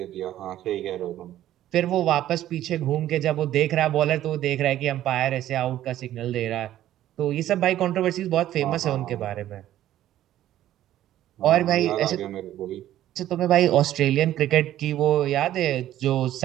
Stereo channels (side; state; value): left; quieter; 12.9 dB